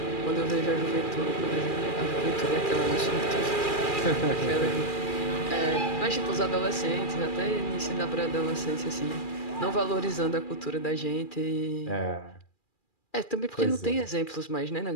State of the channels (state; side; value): late; right; 2.4 ms